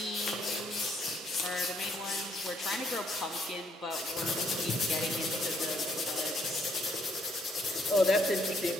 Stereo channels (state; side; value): normal; both; correlation 0.69